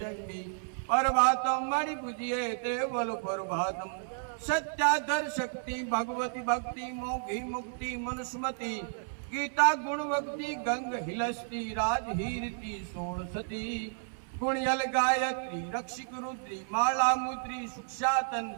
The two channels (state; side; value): silent; left; 57 dB below the other